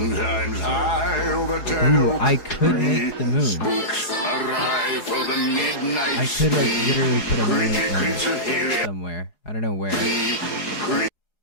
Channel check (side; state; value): right; late; 4.8 ms